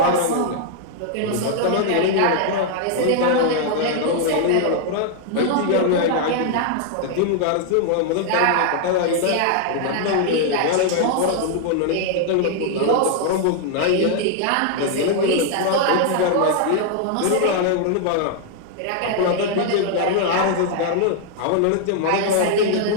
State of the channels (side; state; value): both; different; correlation -0.01